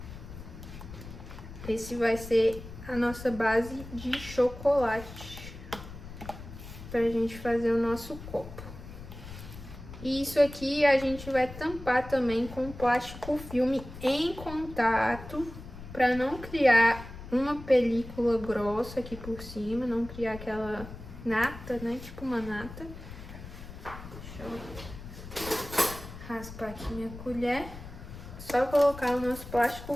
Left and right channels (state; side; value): noise; left; rumble, 13 dB below the sound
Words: Esse vai ser a nossa base de chocolate pra gente fazer o nosso copo. E isso aqui a gente vai tampar também com plástico filme em contato pra não criar uma película grossa aqui por cima, não criar aquela nata, né? Tipo uma nata. Deixa eu raspar aqui minha colher. Só colocar o nosso